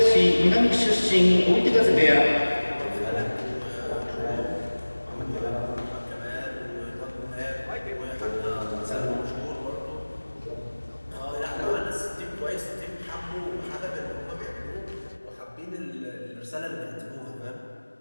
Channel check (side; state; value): both; inverted; correlation -1.00